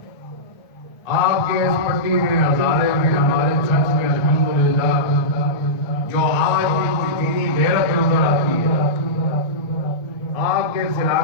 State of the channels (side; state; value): right; late; 1.2 ms